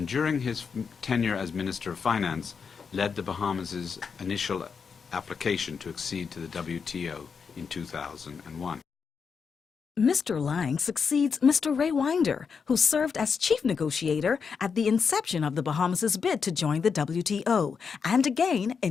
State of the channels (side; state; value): right; quieter; 5.9 dB